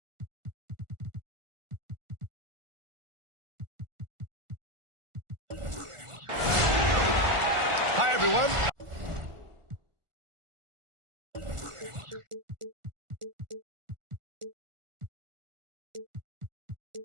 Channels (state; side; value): late; left; 1.4 ms